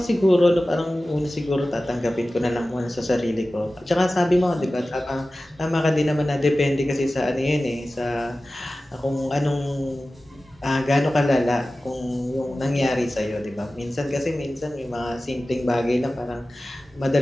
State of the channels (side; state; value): both; normal; correlation 0.96